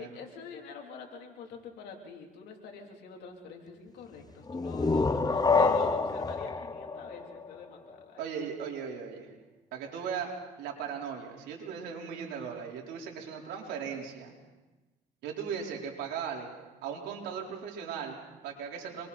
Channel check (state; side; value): normal; both; correlation 0.50